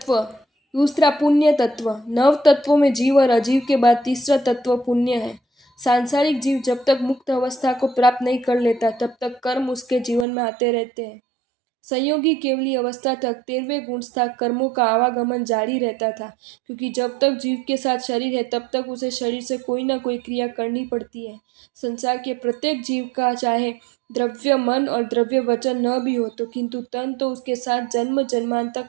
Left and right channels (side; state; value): left; drops out; at 10.2 s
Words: तत्व। दूसरा पुण्य तत्व। नव तत्वों में जीव और अजीव के बाद तीसरा तत्व पुण्य है। सांसारिक जीव जब तक मुक्त अवस्था को प्राप्त नहीं कर लेता तब तक कर्म उसके जीवन में आते रहते हैं। संयोगी केवली अवस्था तक 13वें गुणस्था कर्मों का आवागमन जारी रहता था, क्योंकि जब तक जीव के साथ शरीर है तब तक उसे शरीर से कोई ना कोई क्रिया करनी पड़ती है। संसार के प्रत्येक जीव का चाहे द्रव्य मन और द्रव्य वचन न भी हो तो किंतु तन तो उसके साथ जन्म जन्मांतर